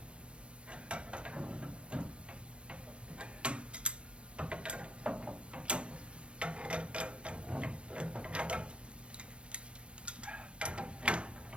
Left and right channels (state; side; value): late; left; 0.059 ms